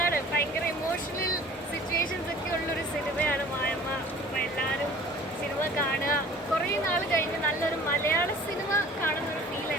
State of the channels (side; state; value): both; normal; correlation 0.48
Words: ഭയങ്കര ഇമോഷണൽ സിറ്റുവേഷൻസ് ഒക്കെ ഉള്ളൊരു സിനിമയാണ് മായമ്മ. അപ്പം എല്ലാവരും സിനിമ കാണുക. കുറേ നാൾ കഴിഞ്ഞ് നല്ലൊരു മലയാള സിനിമ കാണുന്നൊരു ഫീൽ